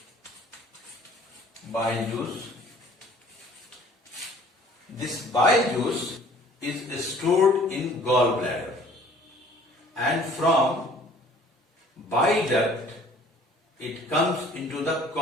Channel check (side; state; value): both; normal; correlation 0.53